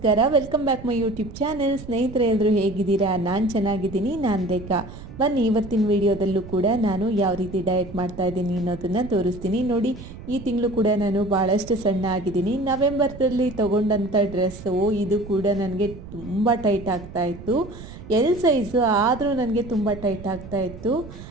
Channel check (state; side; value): noise; right; rumble, 14 dB below the sound